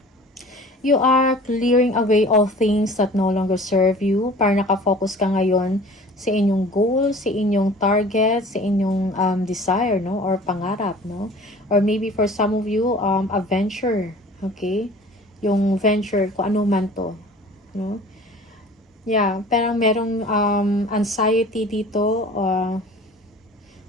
You are clearing away all things that no longer serve you. Para nakafocus ka ngayon sa inyong goal, sa inyong target, sa inyong desire, no? Or pangarap, no? Or maybe for some of you, a venture, okay? Yung venture, kung ano man to, no? Yeah, parang merong anxiety dito,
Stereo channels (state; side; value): normal; both; correlation 0.45